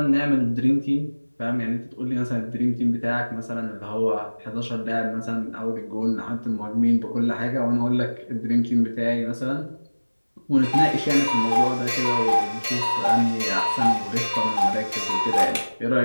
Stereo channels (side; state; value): both; inverted; correlation -1.00